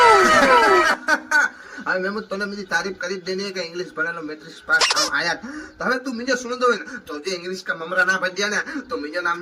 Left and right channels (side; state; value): both; identical; correlation 1.00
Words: अरे मैं तने मुझे तारीफ करी देनी है कि इंग्लिश पढ़ेलो मैट्रिक पास आया तो हमें तू मुझे सुन दो तो जे इंग्लिश का ममरा ना बच दिया ना तो मुझे नाम